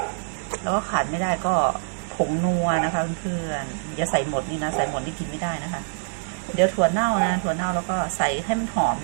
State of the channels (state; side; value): silent; left; digital silence